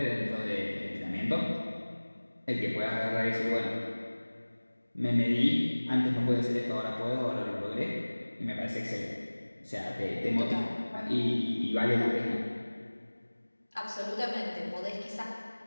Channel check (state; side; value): inverted; both; correlation -1.00